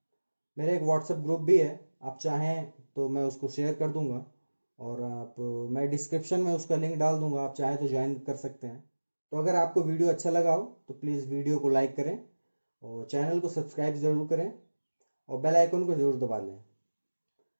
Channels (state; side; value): inverted; both; correlation -1.00